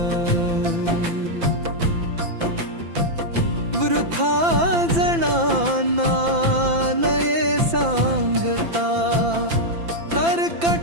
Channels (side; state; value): left; late; 5.9 ms